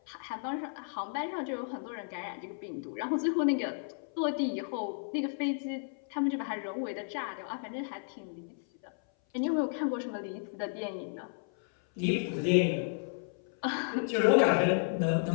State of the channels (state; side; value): silent; right; 56 dB below the other